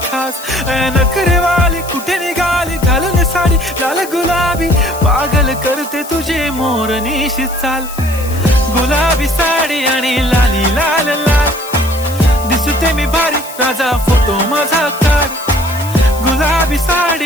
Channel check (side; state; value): left; noise; hiss, 14 dB below the sound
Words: खास. नखरेवाली कुठे निघाली घालून साडी लाल गुलाबी, पागल करते तुझे मोरनीशी चाल. गुलाबी साडी आणि लाली लाल लाल, दिसते मी भारी राजा फोटो माझा काढ. गुलाबी